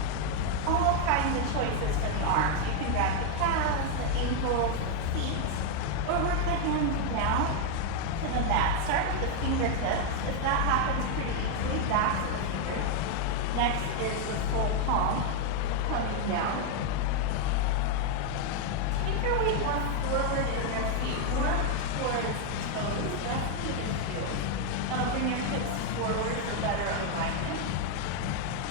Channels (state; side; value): different; both; correlation 0.01